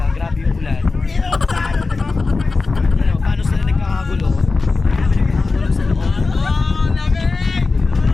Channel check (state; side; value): quieter; right; 3.9 dB